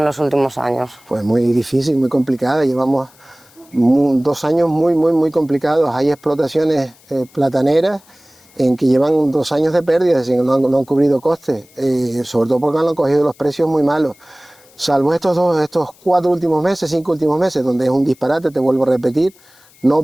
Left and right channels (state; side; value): noise; left; hiss, 28 dB below the sound